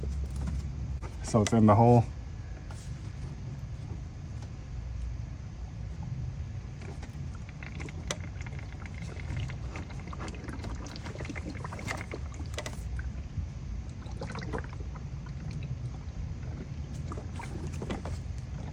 So it's in the hole.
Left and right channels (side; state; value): both; identical; correlation 1.00